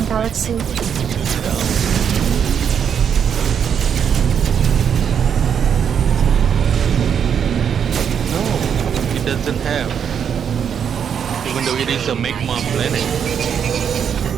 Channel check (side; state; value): left; quieter; 7.9 dB